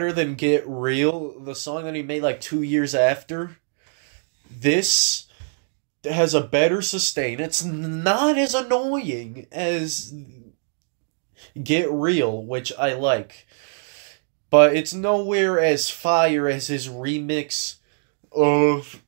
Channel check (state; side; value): silent; left; digital silence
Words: than Get Real, the song that he made like 2 years after. This has a better sustain. It's not as annoying as Get Real, which I like. But it's nowhere as fire as his remix of